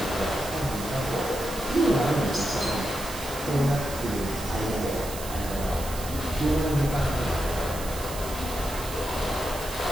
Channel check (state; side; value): noise; right; hiss, 11 dB below the sound